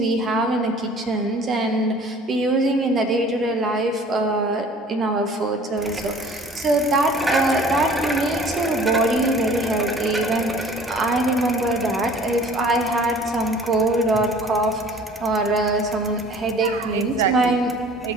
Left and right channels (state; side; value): normal; both; correlation 0.49